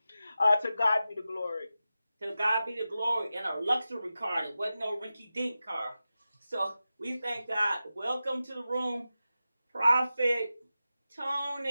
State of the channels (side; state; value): both; inverted; correlation -0.93